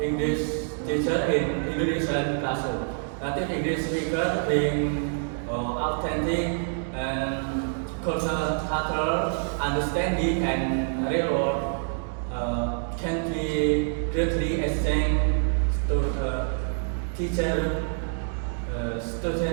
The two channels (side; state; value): left; silent; digital silence